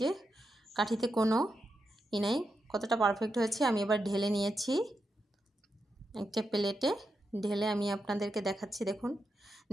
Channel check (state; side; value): normal; both; correlation 0.86